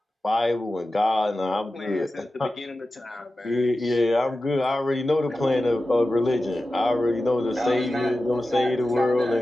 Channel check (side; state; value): both; normal; correlation 0.94